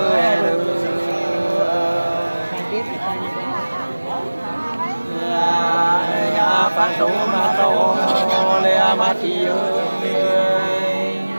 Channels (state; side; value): inverted; both; correlation -1.00